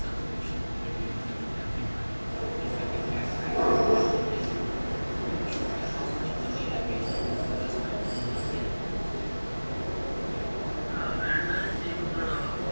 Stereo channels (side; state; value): both; inverted; correlation -1.00